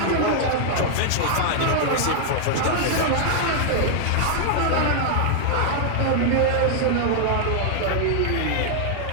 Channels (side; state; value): both; different; correlation 0.00